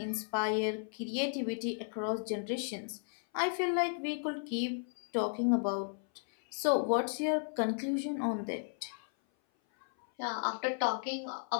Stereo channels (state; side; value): silent; right; 55 dB below the other